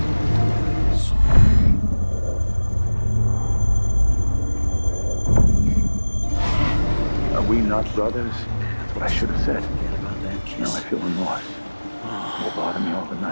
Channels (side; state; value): both; inverted; correlation -1.00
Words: Are we not brothers? That's what I should have said. Now I feel remorse. Will bother me all the